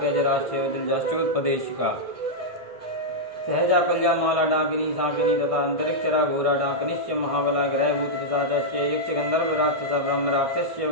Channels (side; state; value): left; late; 1.5 ms